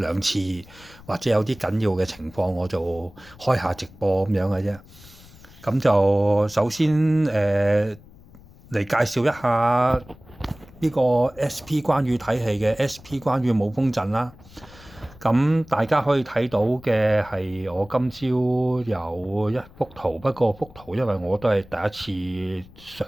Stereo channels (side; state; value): left; noise; rumble, 22 dB below the sound